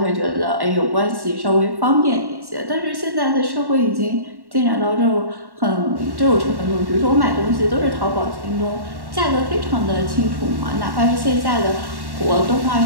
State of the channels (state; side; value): late; left; 1.1 ms